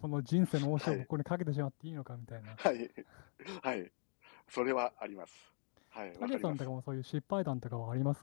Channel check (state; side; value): silent; right; 50 dB below the other